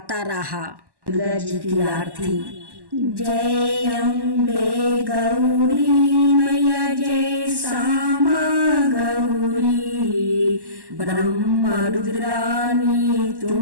रहा। दुर्गा जी की आरती। जय अम्बे गौरी मैया, जय श्यामा गौरी, ब्रह्मा रुद्रानी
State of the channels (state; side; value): late; left; 1.1 ms